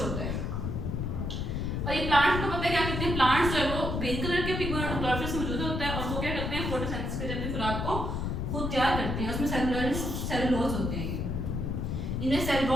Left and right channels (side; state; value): left; noise; rumble, 2 dB below the sound